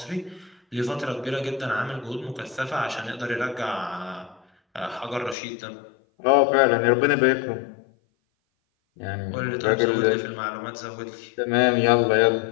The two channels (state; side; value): drops out; right; at 5.4 s